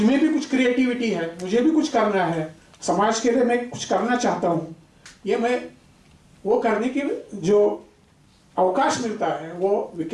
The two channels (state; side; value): identical; both; correlation 1.00